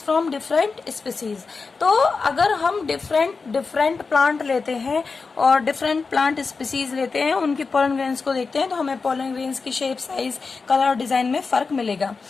from different species. तो अगर हम डिफरेंट प्लांट लेते हैं और डिफरेंट प्लांट स्पीसीज लेते हैं, उनकी पोलन ग्रेन्स को देखते हैं, तो हमें पोलन ग्रेन्स की शेप, साइज, कलर और डिजाइन में फर्क मिलेगा।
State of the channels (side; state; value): right; quieter; 4.5 dB